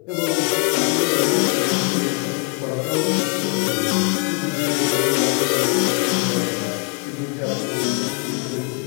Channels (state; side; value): quieter; right; 33.4 dB